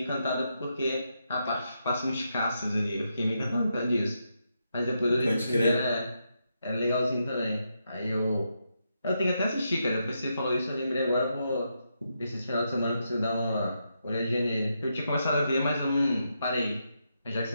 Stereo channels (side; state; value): both; inverted; correlation -0.83